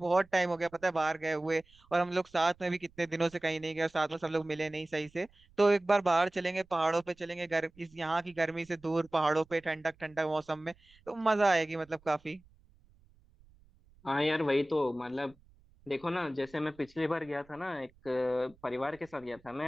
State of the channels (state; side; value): noise; right; rumble, 29 dB below the sound